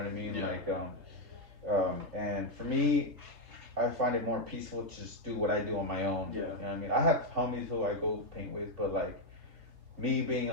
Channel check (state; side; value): late; left; 3.3 ms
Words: I mean? And for me, I find it more peaceful to just do what I do on my own. You know what I mean? I have homies who I go paint with, but like me being